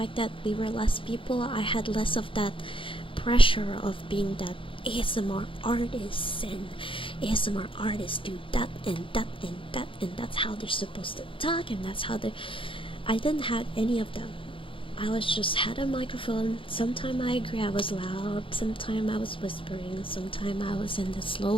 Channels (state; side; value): late; right; 0.25 ms